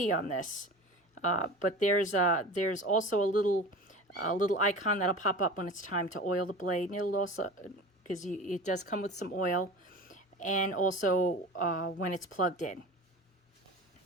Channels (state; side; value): normal; both; correlation 0.35